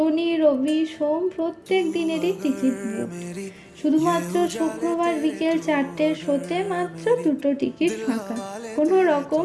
রবি সোম প্রত্যেক দিনেরই টিকিট বুকড। শুধুমাত্র শুক্রবার বিকেল 4টের শোতে মাত্র 2টো টিকিট ফাঁকা। কোনো রকম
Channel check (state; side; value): identical; both; correlation 1.00